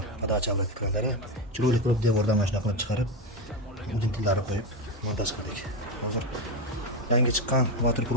подача обратка kranlari. Chiroyli qilib devordan mana shunday qilib chiqarib, udintillarni qo'yib montaj qildik. Hozir yangi chiqqan Water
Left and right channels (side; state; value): both; normal; correlation 0.14